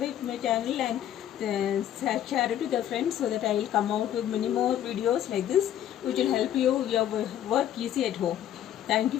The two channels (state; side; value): quieter; right; 11.1 dB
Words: to my channel and share it with your friends, so that I will come out with many more videos like this, which will help your work easy at home. Thank you